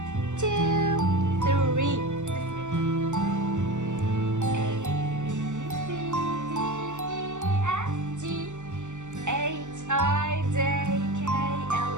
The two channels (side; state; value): left; late; 0.84 ms